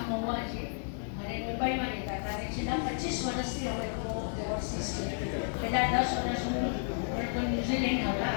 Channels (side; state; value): right; silent; digital silence